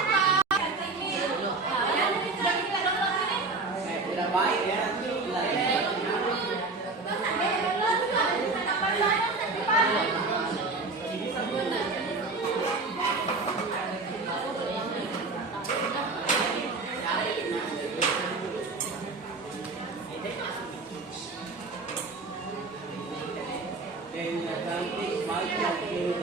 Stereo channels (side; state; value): left; quieter; 3.7 dB